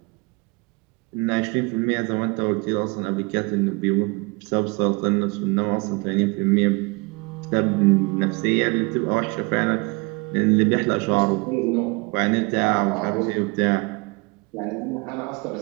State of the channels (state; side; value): quieter; left; 28.5 dB